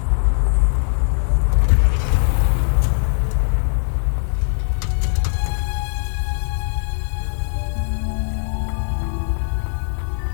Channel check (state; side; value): silent; right; digital silence